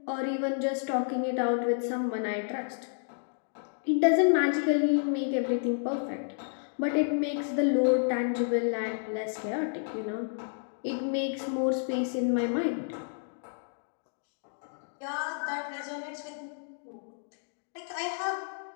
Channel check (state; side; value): silent; right; digital silence